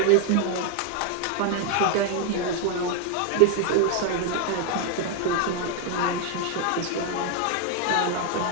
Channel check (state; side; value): different; both; correlation 0.00